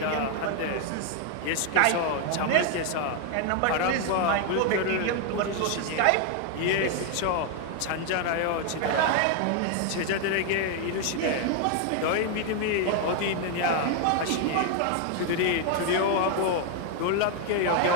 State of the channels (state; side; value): different; both; correlation 0.01